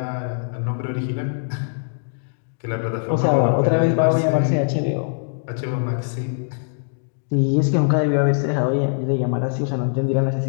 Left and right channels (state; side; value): silent; right; digital silence